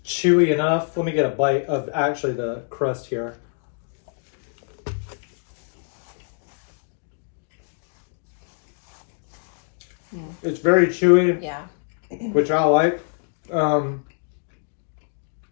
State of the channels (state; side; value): silent; right; 62 dB below the other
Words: chewy enough. Let me get a bite of actually the crust here. It's very chewy. Yeah. Which I like.